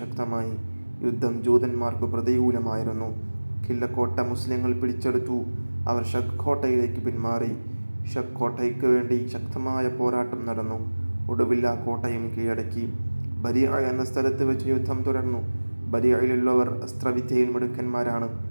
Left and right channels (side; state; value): both; inverted; correlation -1.00